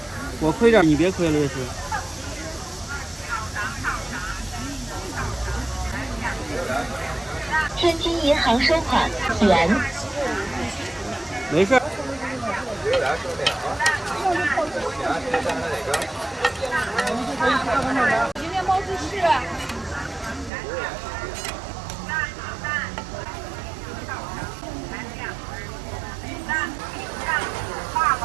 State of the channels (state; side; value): drops out; left; at 20.5 s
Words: 我亏点，你别亏了，这是。天津银行收款元。没事。今天毛主席。